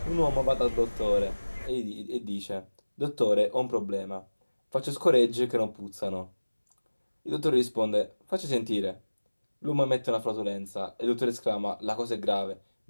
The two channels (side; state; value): both; inverted; correlation -1.00